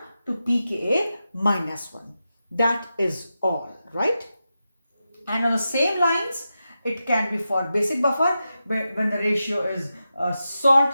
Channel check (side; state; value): both; inverted; correlation -0.90